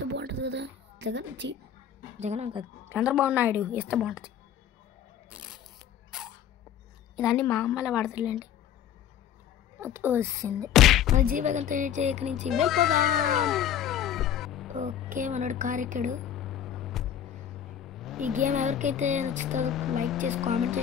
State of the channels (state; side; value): quieter; right; 9.6 dB